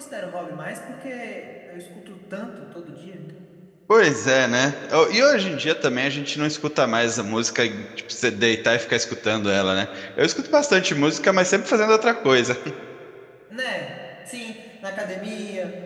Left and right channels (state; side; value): identical; both; correlation 1.00